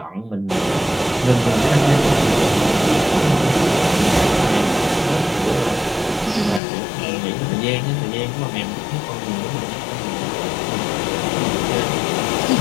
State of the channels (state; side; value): drops out; right; at 6.6 s